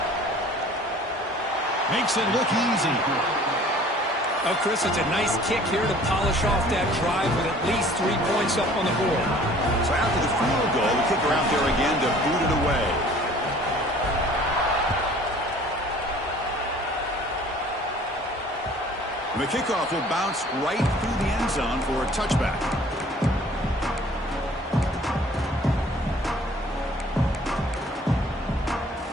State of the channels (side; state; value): both; normal; correlation 0.51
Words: Makes it look easy. Oh, Chris, it's a nice kick here to polish off that drive with at least 3 points up on the board. So after the field goal, the kicker out there again to boot it away. And the kickoff will bounce right through the end zone for a touchback.